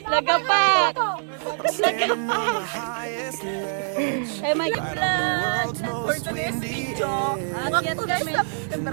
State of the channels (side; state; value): left; silent; 62 dB below the other